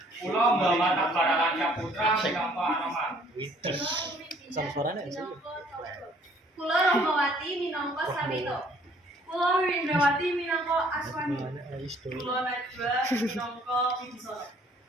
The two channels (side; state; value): both; normal; correlation 0.60